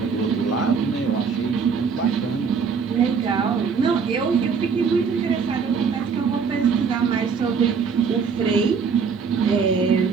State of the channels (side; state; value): left; quieter; 5.8 dB